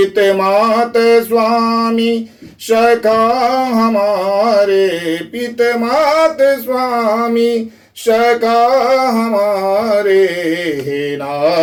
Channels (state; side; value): identical; both; correlation 1.00